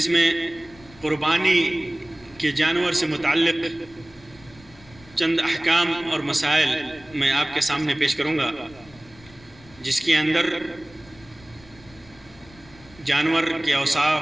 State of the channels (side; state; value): left; noise; rumble, 24 dB below the sound